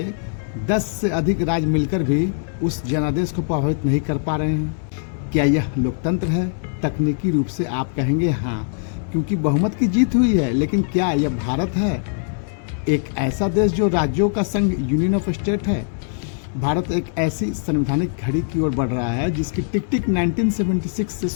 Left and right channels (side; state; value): right; silent; digital silence